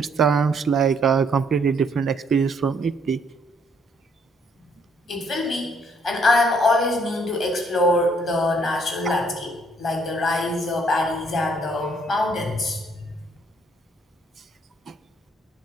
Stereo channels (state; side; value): normal; both; correlation 0.67